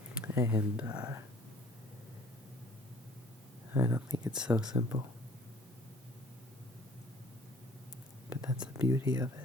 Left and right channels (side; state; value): both; normal; correlation 0.54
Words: And I don't think it's so simple. But that's the beauty of